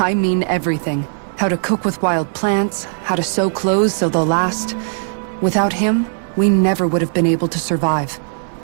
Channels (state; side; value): silent; left; digital silence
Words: mean everything. How to cook with wild plants, how to sew clothes so they'll last. Without him, we never would have been able to survive.